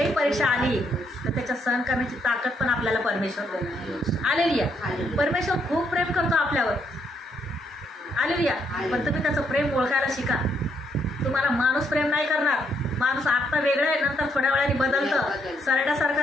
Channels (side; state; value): both; normal; correlation 0.74